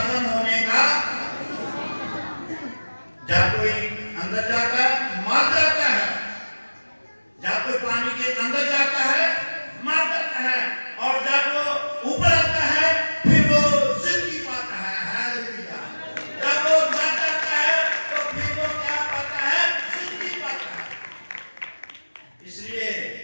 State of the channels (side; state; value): both; inverted; correlation -1.00